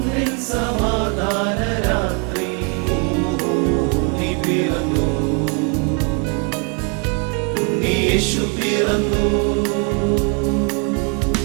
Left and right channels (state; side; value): quieter; left; 35.4 dB